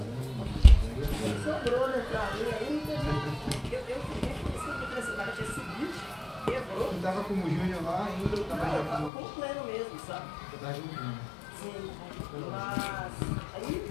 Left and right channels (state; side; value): drops out; right; at 9.1 s